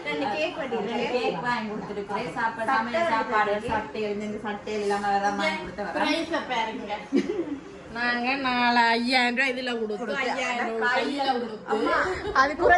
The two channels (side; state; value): both; identical; correlation 1.00